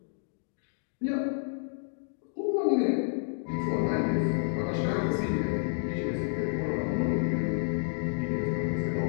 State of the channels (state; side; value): silent; right; digital silence